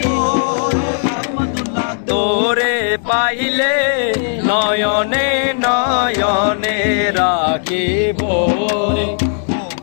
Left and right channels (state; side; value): silent; right; digital silence